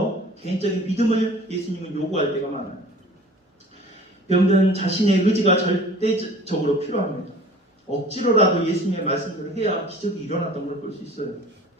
개인적인 믿음을 예수님은 요구할 때가 많아요. 병든 자신의 의지가 절대적으로 필요합니다. 억지로라도 예수님의 말씀대로 해야 기적이 일어났던 걸 볼 수 있어요.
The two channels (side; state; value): both; normal; correlation 0.46